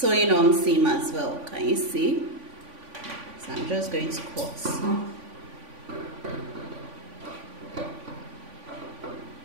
on seam as well. Can you see? So I'm just going to cut.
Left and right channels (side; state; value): left; late; 3.5 ms